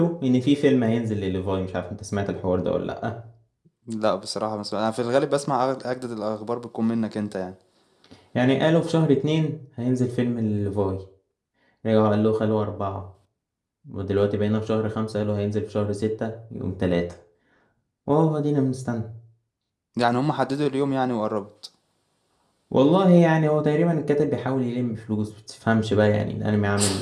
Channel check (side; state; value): both; identical; correlation 1.00